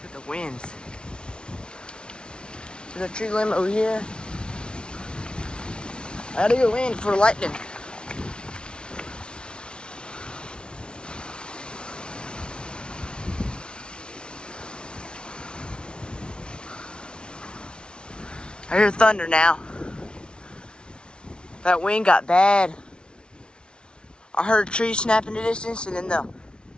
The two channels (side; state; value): right; late; 0.056 ms